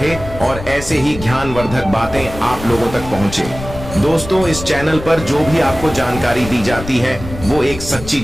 और ऐसे ही ज्ञानवर्धक बातें आप लोगों तक पहुंचे। दोस्तों, इस चैनल पर जो भी आपको जानकारी दी जाती है वो एक सच्ची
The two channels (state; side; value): noise; left; rumble, 11 dB below the sound